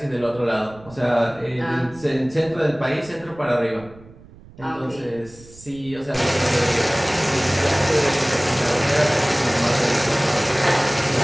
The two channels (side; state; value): right; noise; rumble, 22 dB below the sound